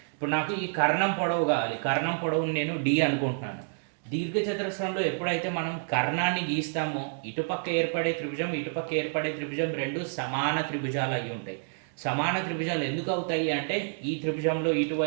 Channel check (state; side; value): silent; left; 59 dB below the other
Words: ఇప్పుడు నాకు ఈ కర్ణం పొడవు కావాలి. కర్ణం పొడవుని నేను డి అనుకుంటున్నాను. దీర్ఘ చతురస్రంలో ఎప్పుడైతే మనం కర్ణాన్ని గీస్తామో ఇటుపక్క ఏర్పడే త్రిభుజం, ఇటుపక్క ఏర్పడే త్రిభుజం రెండు సమాన త్రిభుజాలు అయి ఉంటాయి. సమాన త్రిభుజాలు ఎందుకు అవుతాయి అంటే ఈ త్రిభుజంలో